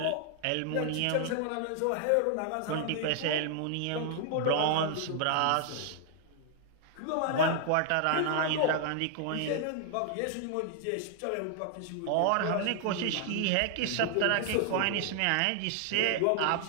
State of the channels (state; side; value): different; both; correlation 0.00